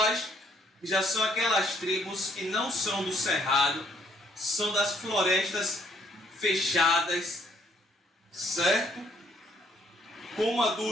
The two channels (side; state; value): both; normal; correlation 0.66